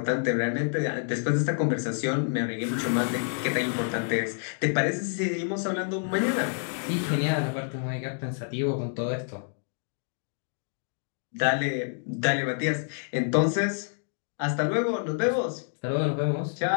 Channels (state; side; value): silent; right; digital silence